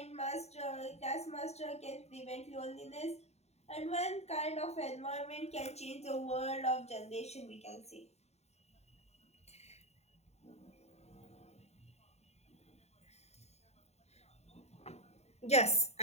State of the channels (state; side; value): late; right; 0.31 ms